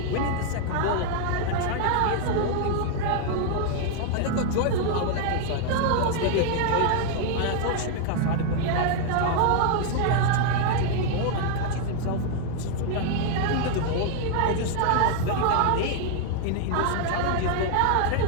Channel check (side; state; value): both; different; correlation 0.00